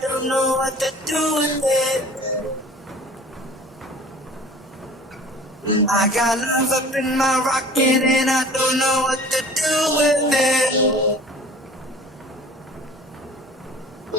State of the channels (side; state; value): both; normal; correlation 0.45